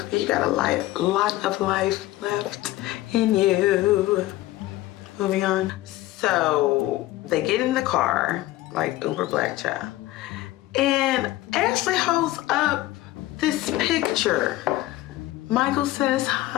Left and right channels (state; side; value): quieter; right; 16.5 dB